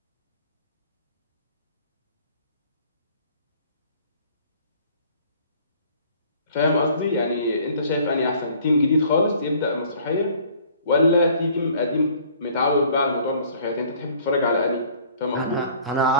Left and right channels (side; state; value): both; inverted; correlation -0.55